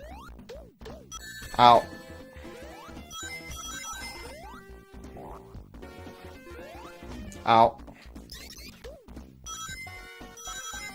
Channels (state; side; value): identical; both; correlation 1.00